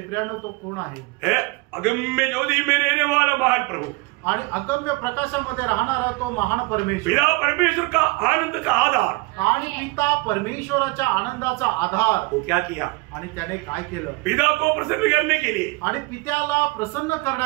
प्रियानो तो कोण आहे? अगम्य ज्योति में रहने वाला महान प्रभु. आणि अगम्य प्रकाशामध्ये राहणारा तो महान परमेश्वर. पिता परमेश्वर का आनंद का आधार. आणि पिता परमेश्वराच्या आनंदाचा आधार. वो क्या किया? आणि त्याने काय केलं? पिता को प्रसन्न करने के लिए आणि पित्याला प्रसन्न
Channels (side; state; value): left; quieter; 25.1 dB